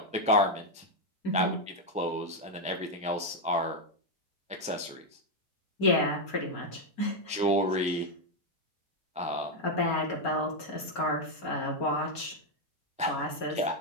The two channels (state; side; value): normal; both; correlation 0.02